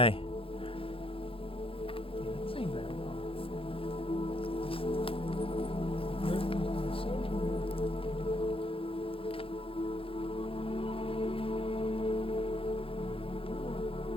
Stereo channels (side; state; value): right; late; 0.27 ms